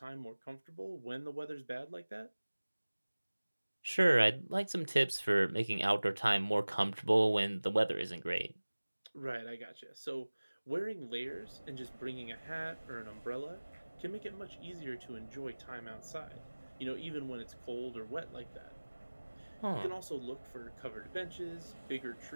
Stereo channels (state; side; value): inverted; both; correlation -1.00